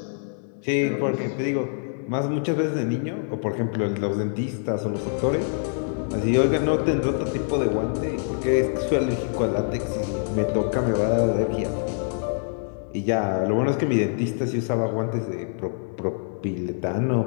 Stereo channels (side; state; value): right; silent; digital silence